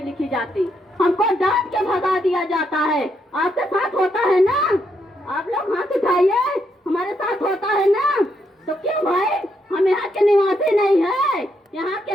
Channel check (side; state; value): both; normal; correlation 0.78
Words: लिखी जाती, हमको डांट के भगा दिया जाता है। आपके साथ होता है ना? आप लोग हाथ उठाइए, हमारे साथ होता है ना? तो क्यों भाई? हम यहाँ के निवासी नहीं है, यहाँ के